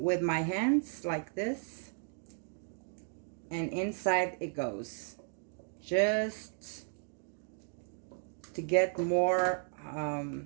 with my hands like this. And inside it goes. Just to get more, oh,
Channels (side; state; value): left; silent; 55 dB below the other